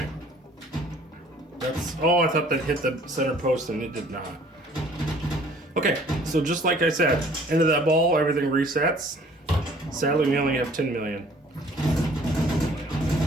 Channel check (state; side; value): normal; both; correlation 0.55